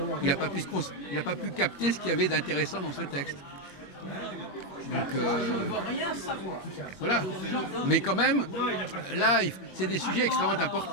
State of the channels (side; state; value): right; late; 21 ms